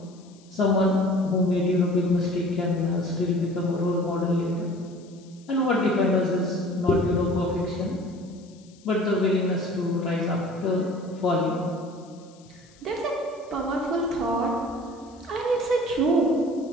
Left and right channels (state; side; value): noise; left; hiss, 28 dB below the sound